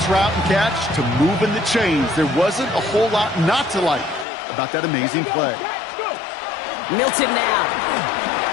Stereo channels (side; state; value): right; drops out; at 4.2 s